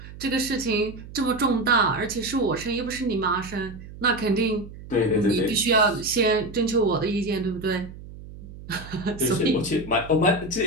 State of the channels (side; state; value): right; noise; hum, 15 dB below the sound